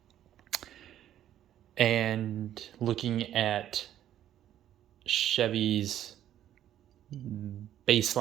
And looking at Chevy's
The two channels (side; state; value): left; quieter; 11.5 dB